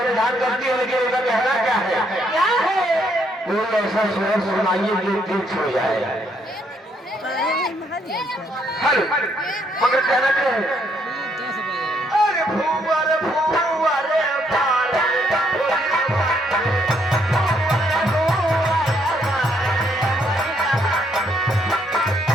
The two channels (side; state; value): both; normal; correlation 0.71